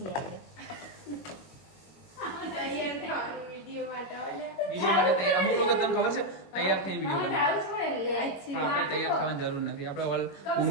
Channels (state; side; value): late; right; 21 ms